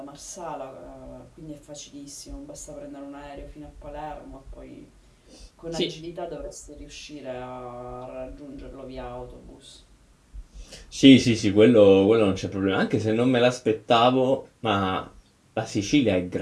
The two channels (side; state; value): both; identical; correlation 1.00